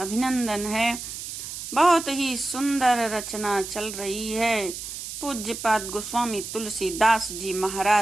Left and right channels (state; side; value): noise; right; hiss, 8 dB below the sound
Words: है। बहुत ही सुंदर रचना चल रही है। पूज्यपाद गोस्वामी तुलसीदास जी